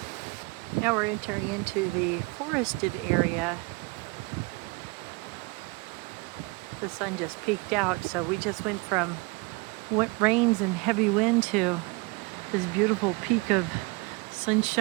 Now we're entering into the forested area. The sun just peeked out, so we just went from wet rains and heavy wind to this beautiful peak of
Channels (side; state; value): left; quieter; 26.6 dB